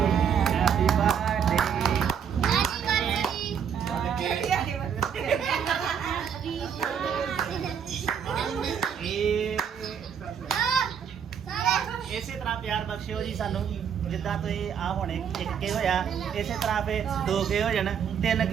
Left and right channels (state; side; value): quieter; left; 7.7 dB